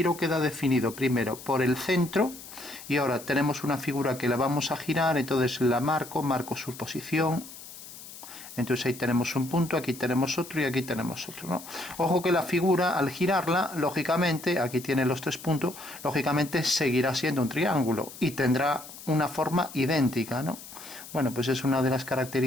queda definido primero por el centro, y ahora tenemos una figura que la vamos a girar, entonces la marco su posición. Entonces ahí tenemos un punto, aquí tenemos otro y aquí tenemos otro, ¿no? Ojo que la figura, al girarla, lógicamente, aquí tiene los 3 puntos, lógicamente seguirá siendo un triángulo y tendrá una forma idéntica, ¿no? Bueno, pues es una de las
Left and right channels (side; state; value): left; noise; hiss, 15 dB below the sound